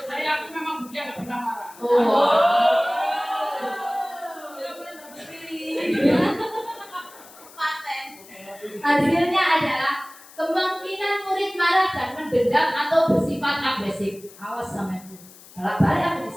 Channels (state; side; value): noise; left; hiss, 21 dB below the sound